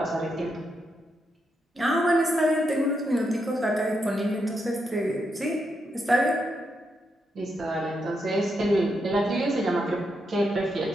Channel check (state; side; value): normal; both; correlation 0.82